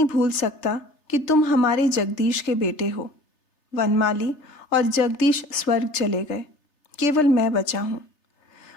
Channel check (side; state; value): right; late; 3.3 ms